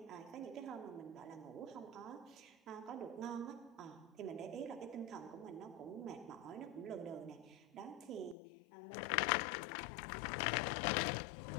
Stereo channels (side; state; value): right; drops out; at 8.3 s